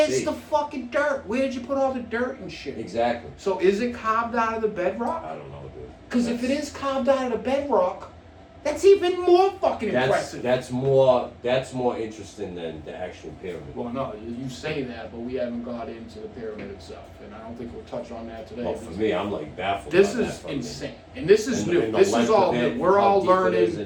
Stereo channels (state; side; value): identical; both; correlation 1.00